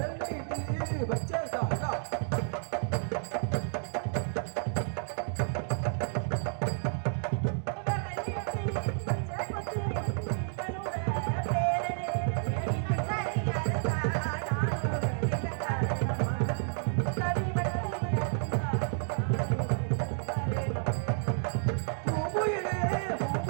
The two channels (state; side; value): silent; left; digital silence